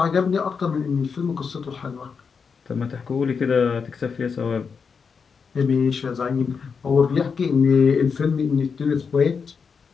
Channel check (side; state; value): right; quieter; 5.8 dB